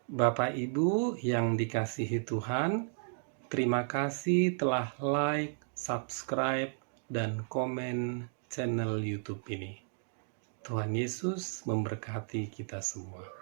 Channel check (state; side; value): silent; left; digital silence